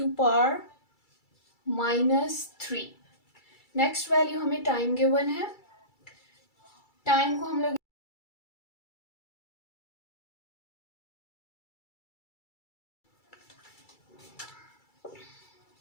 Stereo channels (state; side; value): late; right; 2.3 ms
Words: नेक्स्ट वैल्यू हमें टाइम गिवन है। टाइम को हम लोग